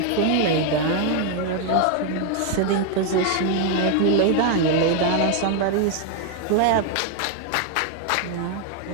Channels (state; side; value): different; both; correlation 0.01